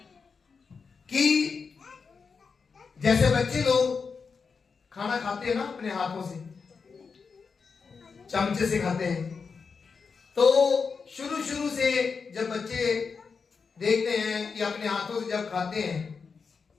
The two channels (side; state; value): right; quieter; 5.3 dB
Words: कि जैसे बच्चे लोग खाना खाते हैं ना अपने हाथों से, चमचे से खाते हैं, तो शुरू से जब बच्चे देखते हैं कि अपने हाथों से जब खाते हैं,